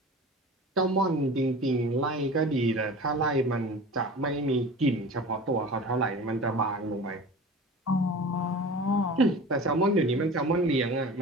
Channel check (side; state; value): both; normal; correlation 0.37